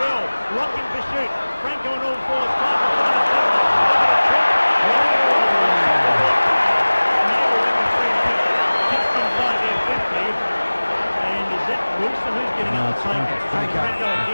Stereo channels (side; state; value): both; inverted; correlation -1.00